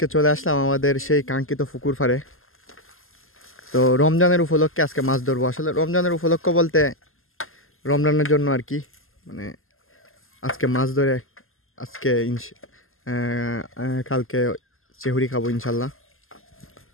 চলে আসলাম আমাদের সেই কাঙ্ক্ষিত পুকুর পাড়ে। তো রমজানের উপলক্ষে আজকে মাছ ধরবো। আসলে রমজানের উপলক্ষ বলতে রমজানের জন্য আর কি, মানে আজকে মাছ ধরে আজকে কালকে চেহুরি খাবো ইনশাল্লাহ।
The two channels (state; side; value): late; right; 0.61 ms